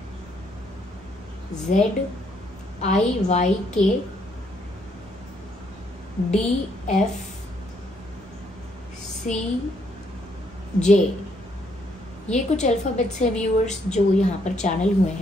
ये कुछ अल्फाबेट्स हैं व्यूअर्स जो यहाँ पर चैनल हुए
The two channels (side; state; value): both; normal; correlation 0.71